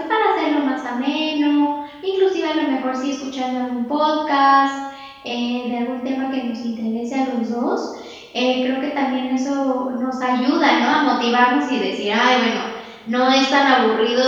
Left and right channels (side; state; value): both; identical; correlation 1.00